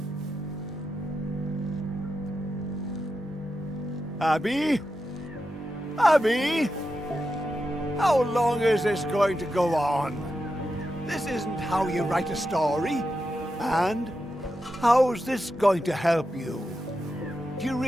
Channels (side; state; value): both; normal; correlation 0.88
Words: Abby? Abby? How long is this going to go on? This isn't how you write a story. And how's this going to help you? Do you